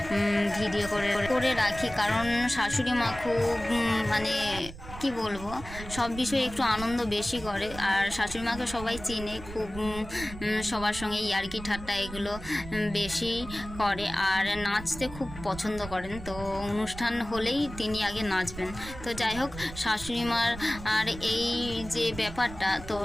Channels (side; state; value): right; noise; rumble, 13 dB below the sound